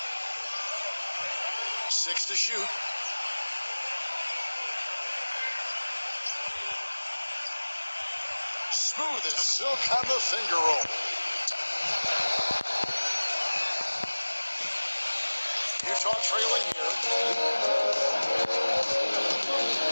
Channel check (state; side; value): inverted; both; correlation -1.00